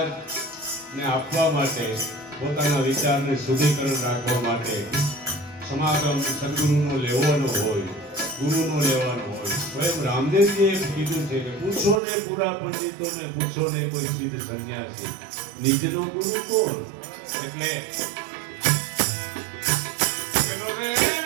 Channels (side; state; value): left; drops out; at 12.0 s